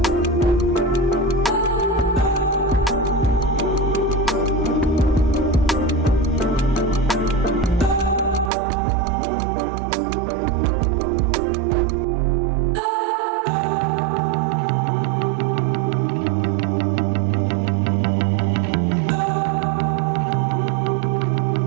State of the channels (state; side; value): drops out; left; at 8.5 s